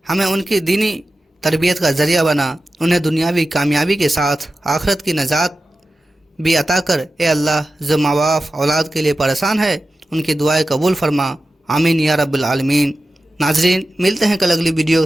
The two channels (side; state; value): both; normal; correlation 0.94